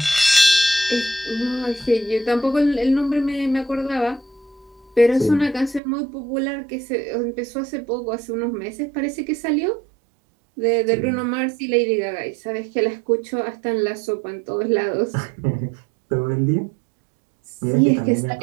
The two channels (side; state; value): left; drops out; at 5.8 s